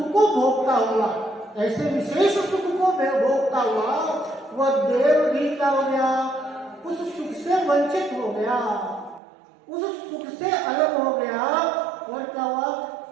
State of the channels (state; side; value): drops out; left; at 9.2 s